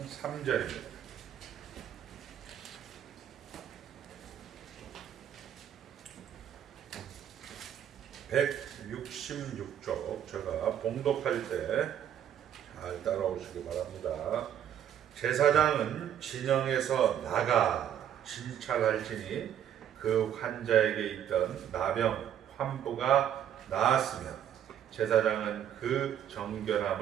3절입니다. (166쪽) 제가 봉독할 때 잘 따라오시기 바랍니다. 제사장은 진영에서 나가 진찰할지니 그 환자에게 있던 나병 환부가 나았으면 제사장은 그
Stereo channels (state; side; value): quieter; left; 9.9 dB